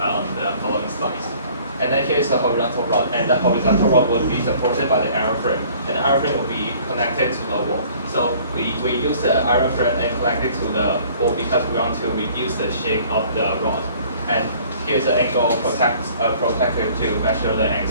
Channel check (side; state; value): both; inverted; correlation -0.54